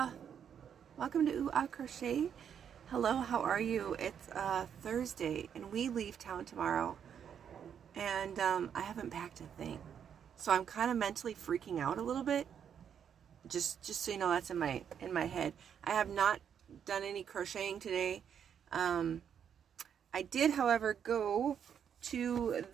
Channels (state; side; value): quieter; left; 8.2 dB